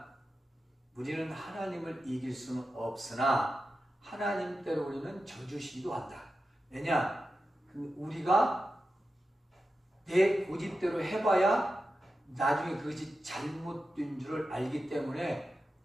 우리는 하나님을 이길 수는 없으나 하나님대로 우리는 져주시기도 한다. 왜냐? 우리가 내 고집대로 해봐야 나중에 그것이 잘못된 줄을 알기 때문에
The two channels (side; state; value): both; normal; correlation 0.91